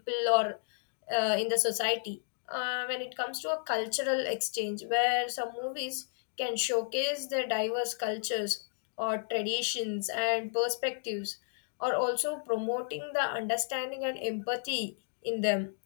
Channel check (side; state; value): right; silent; digital silence